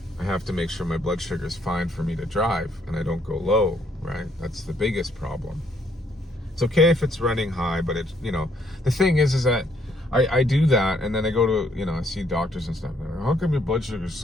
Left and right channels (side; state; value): both; normal; correlation 0.69